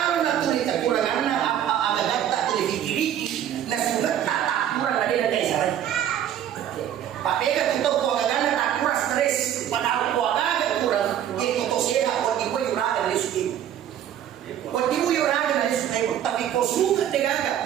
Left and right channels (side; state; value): left; quieter; 10.5 dB